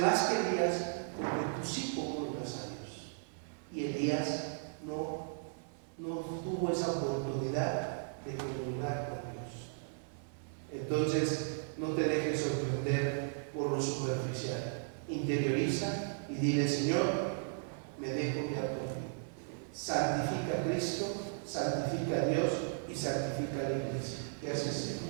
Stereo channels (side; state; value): left; silent; 54 dB below the other